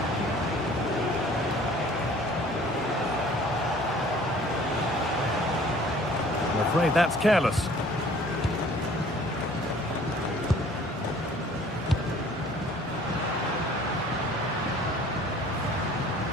I'm afraid that's careless.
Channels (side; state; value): both; normal; correlation 0.52